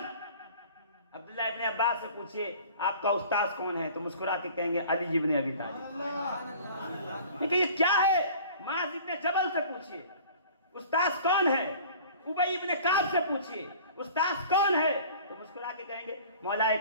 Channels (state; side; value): inverted; both; correlation -0.46